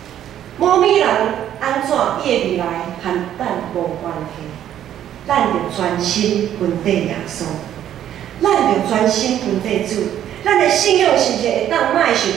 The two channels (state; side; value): quieter; left; 10.9 dB